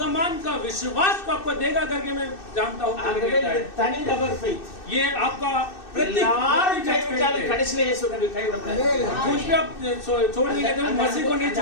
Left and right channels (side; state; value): right; late; 2.6 ms